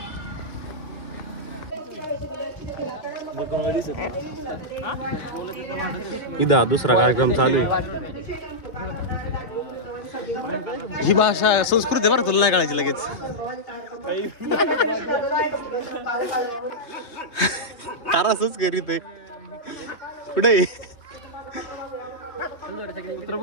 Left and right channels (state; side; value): late; right; 3.2 ms